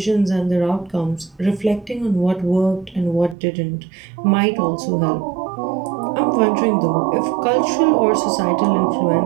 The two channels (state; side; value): drops out; left; at 3.4 s